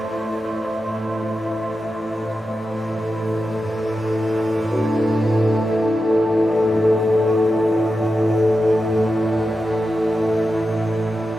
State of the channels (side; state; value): both; normal; correlation 0.90